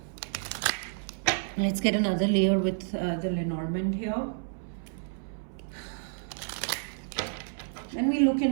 Let's get another layer with the Lenormand here. Then we look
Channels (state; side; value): silent; left; 58 dB below the other